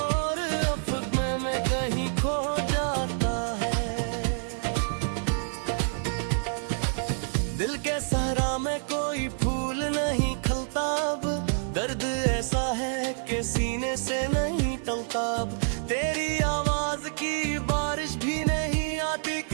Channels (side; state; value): left; silent; 60 dB below the other